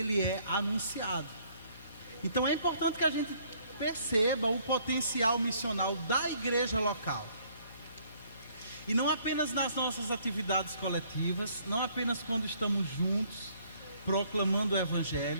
é anunciado. Então é importante que a gente perceba o potencial missional da igreja local. E não apenas nas nossas atividades coletivas, não apenas quando estamos juntos, proclamando o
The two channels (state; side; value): inverted; both; correlation -0.63